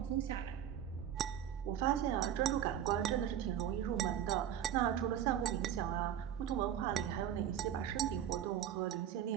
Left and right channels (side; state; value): left; quieter; 10.0 dB